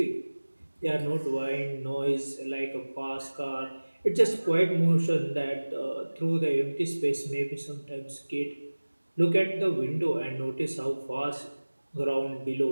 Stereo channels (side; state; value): both; inverted; correlation -1.00